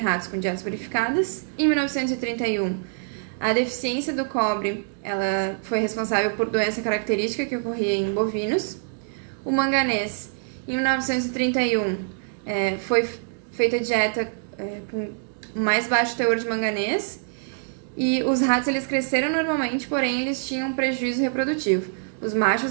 com dietas purificadas. Em 1931, a deficiência do cobre ela foi responsável por doença característica que ocorria em bovinos. O manganês, em 1931, foi feita dieta com mais baixo teor de manganês. E os ratos eles cresceram normalmente, porém eles tinham um prejuízo reprodutivo. Os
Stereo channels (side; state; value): left; silent; digital silence